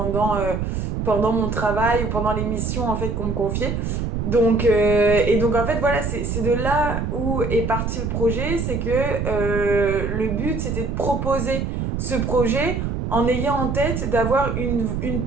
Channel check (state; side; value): noise; right; rumble, 2 dB below the sound